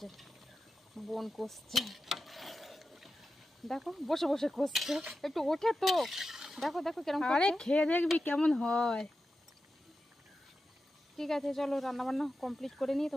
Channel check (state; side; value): normal; both; correlation 0.91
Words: বোন কষছে, দেখো বসে বসে কষছে। একটু ওঠে তো, দেখো দেখো কেরম আরে করছে। খেয়ে দেখবি কেমন হয়। ঠিক আছে চলো রান্না বান্না কমপ্লিট করে নিয়ে